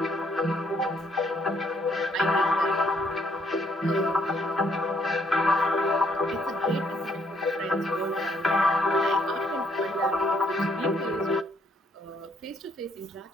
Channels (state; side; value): normal; both; correlation 0.69